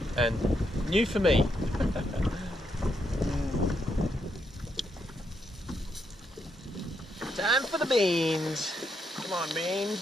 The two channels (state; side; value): normal; both; correlation 0.79